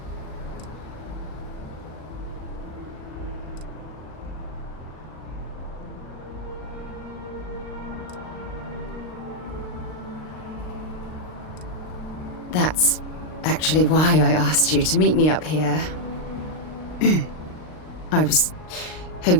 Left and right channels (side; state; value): right; late; 39 ms